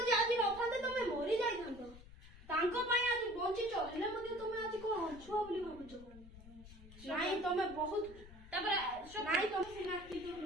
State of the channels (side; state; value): left; noise; rumble, 18 dB below the sound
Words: ଆଜି ନଥାନ୍ତେ ତମେ ମରି ଯାଇଥାନ୍ତ। ତାଙ୍କ ପାଇଁ ଆଜି ବଞ୍ଚିଛ ହେଲେ ମଧ୍ୟ ତମେ ଆଜି କ'ଣ ଅଛୁଆ ବୋଲି ଭାବୁଛ? ନାଇଁ ତମେ ବହୁତ ତାପରେ ନାଇଁ ତମେ ସିନା କିନ୍ତୁ